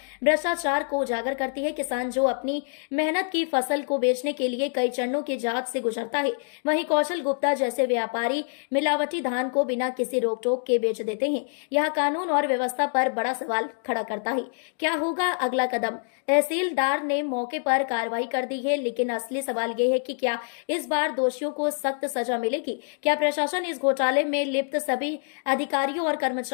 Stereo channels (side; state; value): right; silent; 58 dB below the other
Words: भ्रष्टाचार को उजागर करती है। किसान जो अपनी मेहनत की फसल को बेचने के लिए कई चरणों की जांच से गुजरता है, वहीं कौशल गुप्ता जैसे व्यापारी मिलावटी धान को बिना किसी रोक टोक के बेच देते हैं। यह कानून और व्यवस्था पर बड़ा सवाल खड़ा करता है। क्या होगा अगला कदम? तहसीलदार ने मौके पर कार्रवाई कर दी है, लेकिन असली सवाल यह है कि क्या इस बार दोषियों को सख्त सजा मिलेगी? क्या प्रशासन इस घोटाले में लिप्त सभी अधिकारियों और